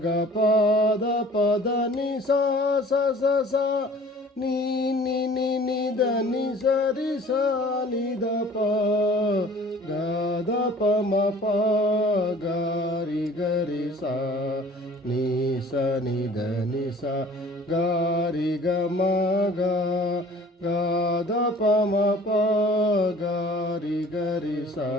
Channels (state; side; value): normal; both; correlation 0.49